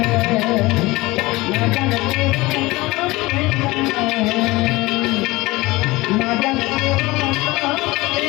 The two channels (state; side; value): quieter; right; 21.0 dB